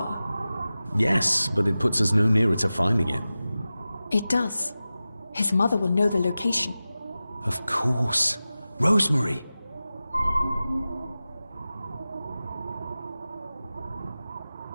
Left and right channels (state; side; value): inverted; both; correlation -0.95